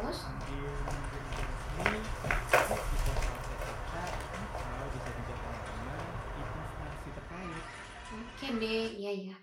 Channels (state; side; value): identical; both; correlation 1.00